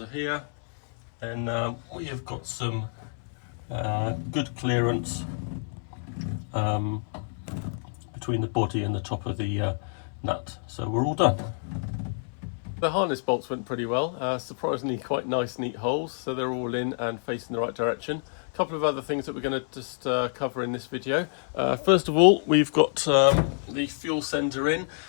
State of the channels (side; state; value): right; silent; 58 dB below the other